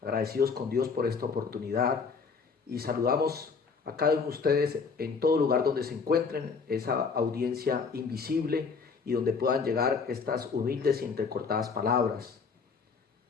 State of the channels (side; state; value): right; quieter; 5.2 dB